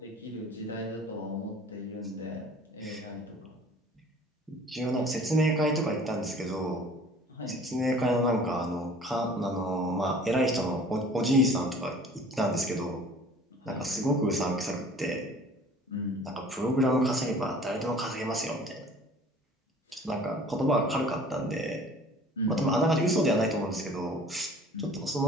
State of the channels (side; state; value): both; normal; correlation 0.49